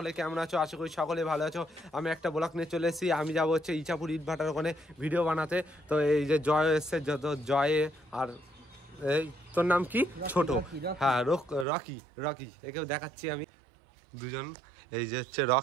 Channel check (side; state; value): left; drops out; at 11.7 s